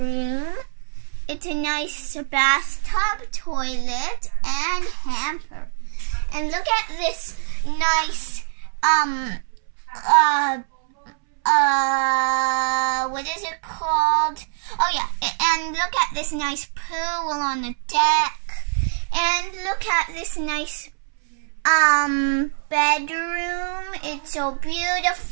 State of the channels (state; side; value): silent; left; 63 dB below the other